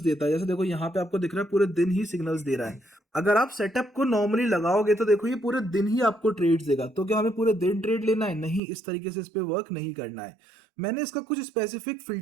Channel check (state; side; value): drops out; left; at 8.6 s